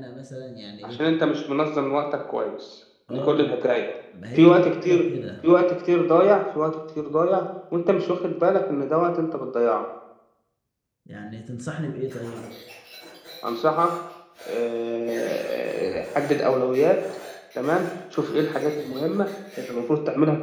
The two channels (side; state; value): both; identical; correlation 1.00